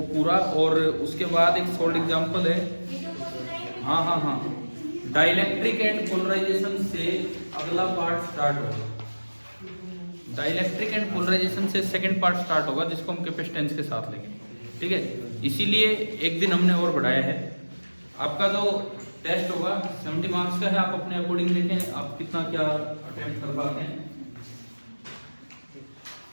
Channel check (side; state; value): both; inverted; correlation -1.00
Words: पूरा। और उसके बाद एक सॉल्ड एग्जांपल है, हाँ, डाइलेक्ट्रिक एंड पोलराइजेशन से अगला पार्ट स्टार्ट होगा। डाइलेक्ट्रिक एंड पोलराइजेशन से सेकंड पार्ट स्टार्ट होगा जिसको हम कैपेसिटेंस के साथ लेंगे, ठीक है। इसीलिए एक दिन हमने और बढ़ाया है। आपका जो टेस्ट होगा 70 मार्क्स का है, आप अपने अकॉर्डिंग देखें आप कितना क्या अटेम्प्ट कर पाते हैं।